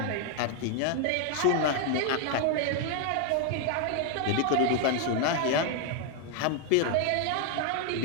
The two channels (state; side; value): different; both; correlation 0.00